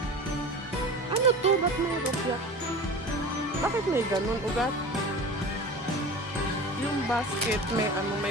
Ano to? Ba't may rupya? Bakit may ganun ugat? Yung basket,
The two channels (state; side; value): normal; both; correlation 0.35